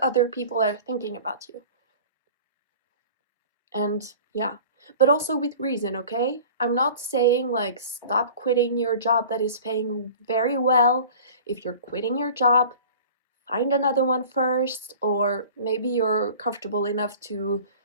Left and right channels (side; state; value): both; inverted; correlation -0.43